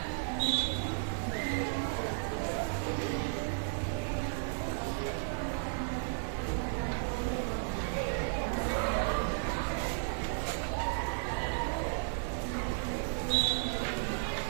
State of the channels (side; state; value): left; silent; 55 dB below the other